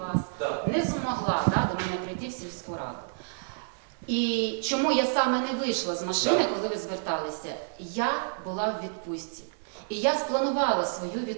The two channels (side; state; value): left; silent; digital silence